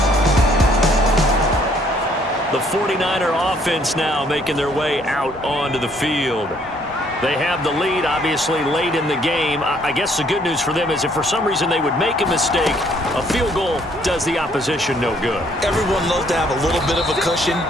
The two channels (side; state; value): both; normal; correlation 0.65